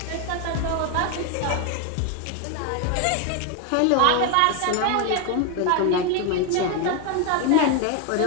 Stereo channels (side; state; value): both; different; correlation 0.01